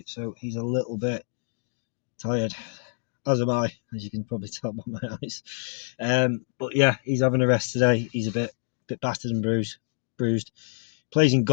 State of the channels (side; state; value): right; silent; digital silence